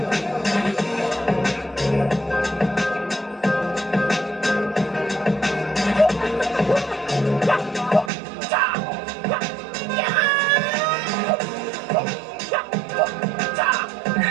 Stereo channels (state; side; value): drops out; left; at 8.1 s